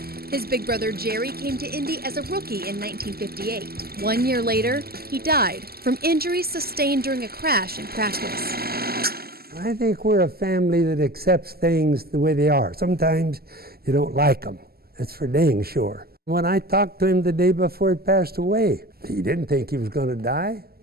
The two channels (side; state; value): left; late; 0.45 ms